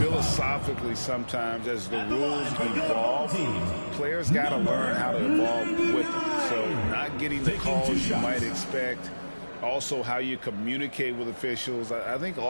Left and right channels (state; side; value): inverted; both; correlation -1.00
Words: sometimes as the rules evolve, players got to learn how to evolve with them. So not getting the calls you might expect, also how you communicate with officials. I think